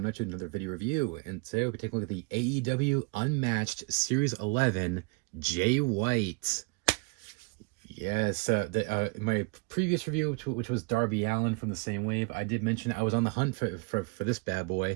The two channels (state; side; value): quieter; left; 31.2 dB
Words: at you with another video review, and today we'll be taking a look at the AEW Unmatched Series 11 Jay White. Yes, my previous review, which was Darby Allin from the same wave, I did mention I was on the hunt for this bad